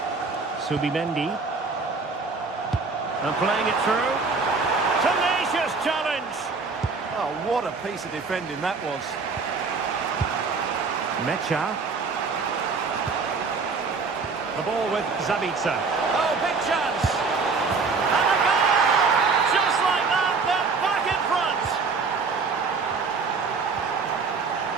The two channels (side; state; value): left; quieter; 4.6 dB